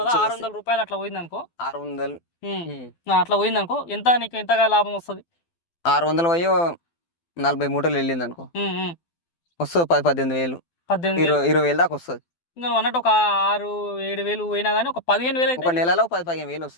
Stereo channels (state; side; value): late; right; 12 ms